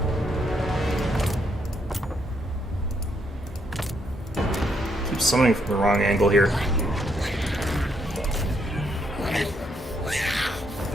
Keep summoning from the wrong angle here.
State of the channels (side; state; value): both; normal; correlation 0.75